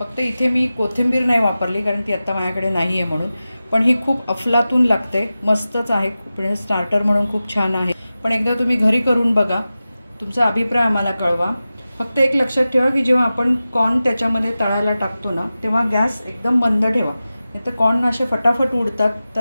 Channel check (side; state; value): both; inverted; correlation -0.95